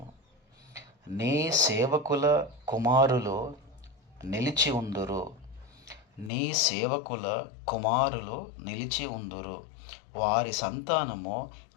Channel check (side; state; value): right; drops out; at 6.3 s